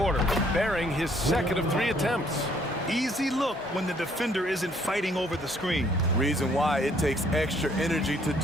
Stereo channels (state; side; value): normal; both; correlation 0.64